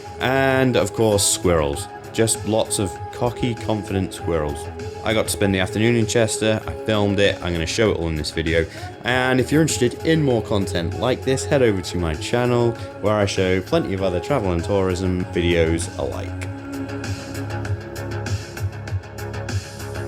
and of course squirrels. Just lots of cocky, confident squirrels. I got to spend the afternoon in Chester, I filmed it, I'm going to show it all in this video, and if you're interested in more content like this, head over to my channel where I show plenty of other travel and tourism videos alike.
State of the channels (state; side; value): identical; both; correlation 1.00